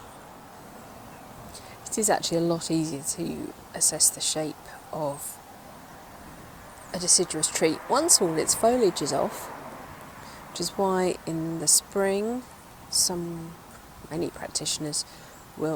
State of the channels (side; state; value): both; identical; correlation 1.00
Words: It is actually a lot easier to assess the shape of a deciduous tree once all its foliage is off, which is why in the spring many practitioners